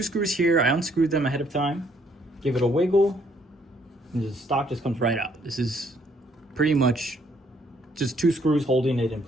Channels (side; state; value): both; normal; correlation 0.67